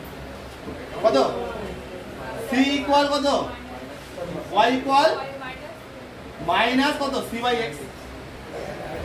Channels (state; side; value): identical; both; correlation 1.00